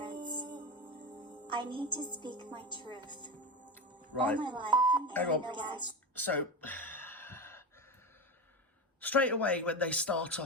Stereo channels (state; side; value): normal; both; correlation 0.21